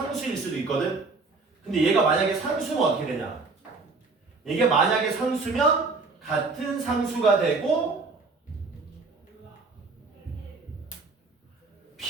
수도 있거든. 근데 얘가 만약에 상수면 어떻게 되냐? 이게 만약에 상수면 같은 상수가 되고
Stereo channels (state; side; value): quieter; left; 4.0 dB